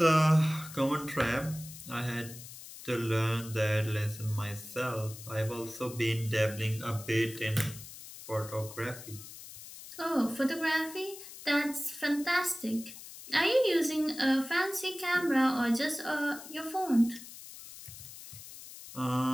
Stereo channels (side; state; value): left; noise; hiss, 14 dB below the sound